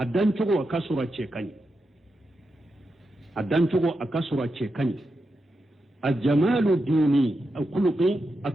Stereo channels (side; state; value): both; normal; correlation 0.87